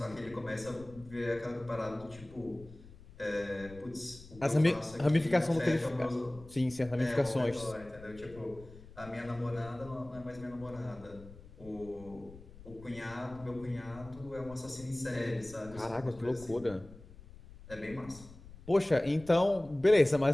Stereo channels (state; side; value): noise; left; rumble, 19 dB below the sound